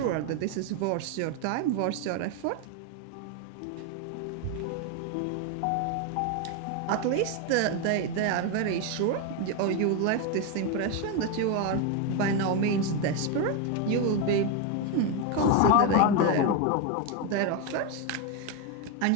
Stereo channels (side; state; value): both; different; correlation 0.02